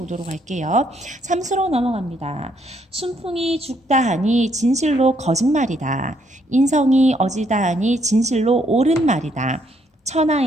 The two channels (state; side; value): normal; both; correlation 0.71